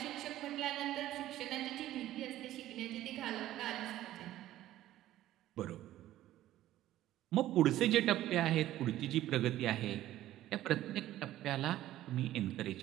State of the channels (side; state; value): left; quieter; 14.1 dB